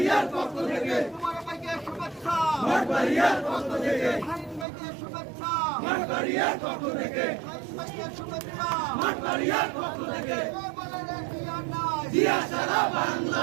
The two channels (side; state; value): left; drops out; at 4.7 s